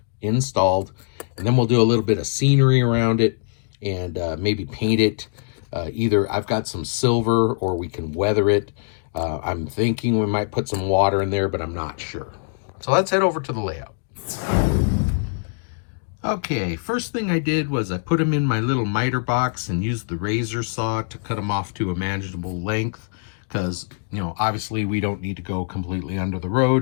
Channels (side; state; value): right; silent; digital silence